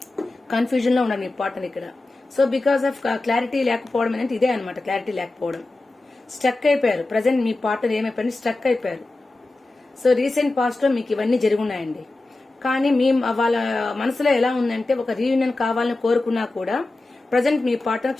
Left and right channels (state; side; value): quieter; right; 3.0 dB